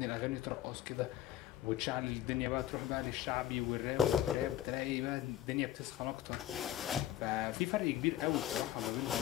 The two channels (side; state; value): right; quieter; 12.8 dB